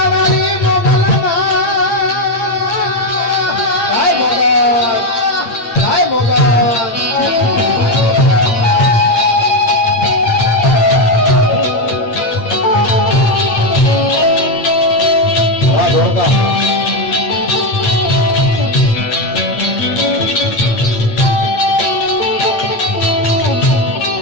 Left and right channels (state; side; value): late; right; 8.8 ms